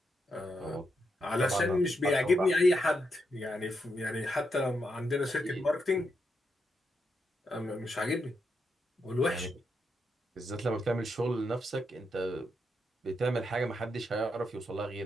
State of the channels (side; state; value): both; normal; correlation 0.82